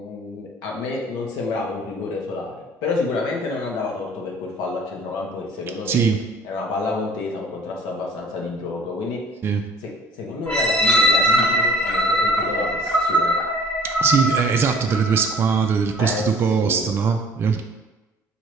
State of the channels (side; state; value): both; normal; correlation 0.51